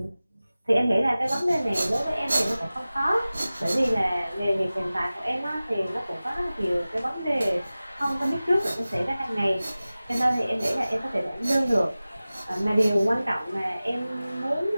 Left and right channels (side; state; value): both; inverted; correlation -0.97